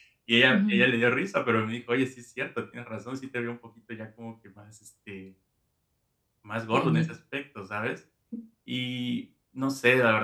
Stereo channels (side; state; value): both; identical; correlation 1.00